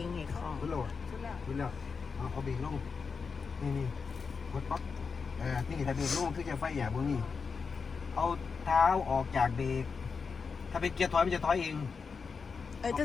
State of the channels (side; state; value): right; quieter; 5.3 dB